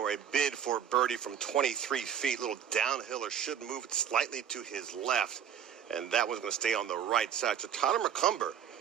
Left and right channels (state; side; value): quieter; left; 8.6 dB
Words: a bid for birdie from 23 feet. Little downhiller, should move it slightly to his left, and that one's going to stay on the right side. So Tyler McCumber